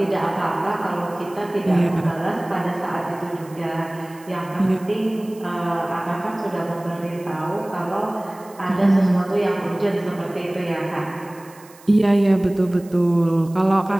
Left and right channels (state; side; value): noise; right; hiss, 24 dB below the sound